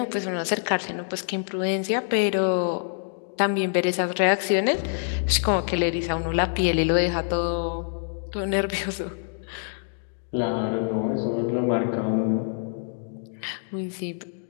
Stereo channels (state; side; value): silent; right; digital silence